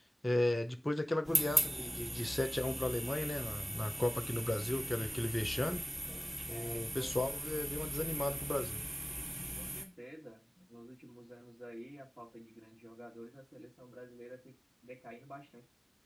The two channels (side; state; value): both; normal; correlation 0.97